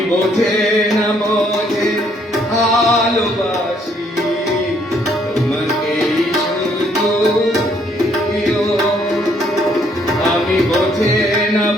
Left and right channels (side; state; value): both; normal; correlation 0.67